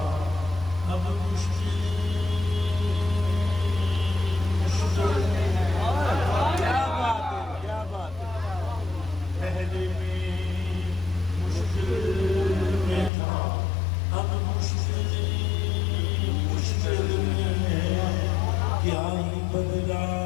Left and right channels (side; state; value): right; drops out; at 13.1 s